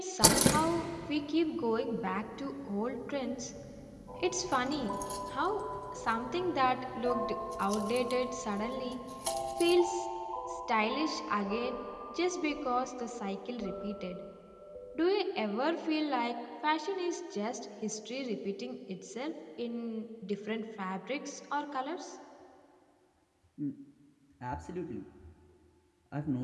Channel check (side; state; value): both; identical; correlation 1.00